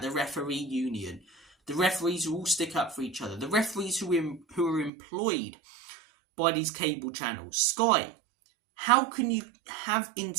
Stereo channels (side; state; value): left; drops out; at 4.9 s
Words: the referee union. The referees who all stick up for each other. The referees who are employed by these cable channels. Sky, how can you have